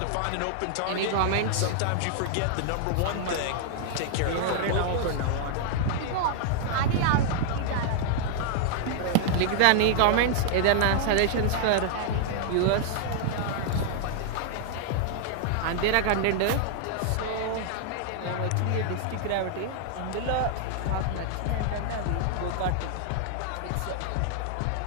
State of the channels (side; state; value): both; different; correlation -0.01